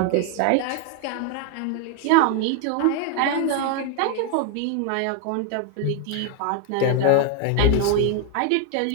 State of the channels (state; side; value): different; both; correlation 0.01